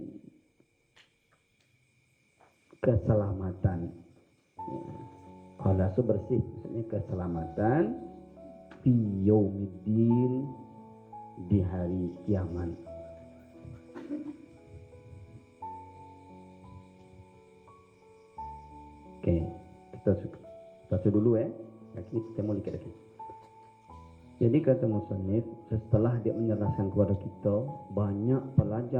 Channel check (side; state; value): both; identical; correlation 1.00